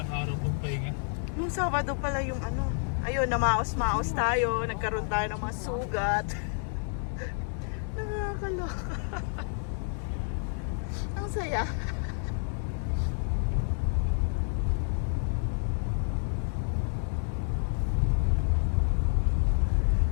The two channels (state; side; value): silent; right; 58 dB below the other